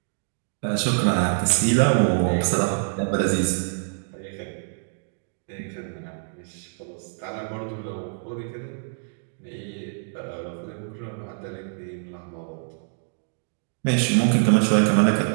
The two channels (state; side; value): silent; left; digital silence